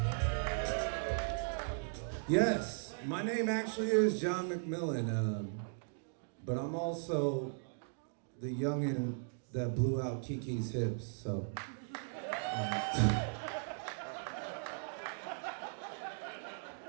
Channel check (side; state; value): left; silent; digital silence